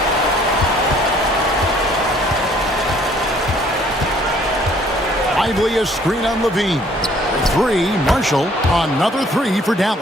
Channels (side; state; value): both; normal; correlation 0.59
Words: Lively a screen on Levine. 3, Marshall. Another 3 for